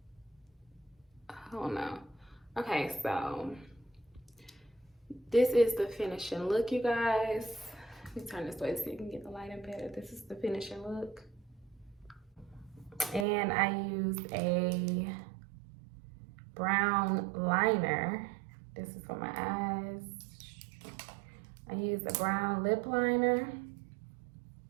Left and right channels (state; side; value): drops out; left; at 13.2 s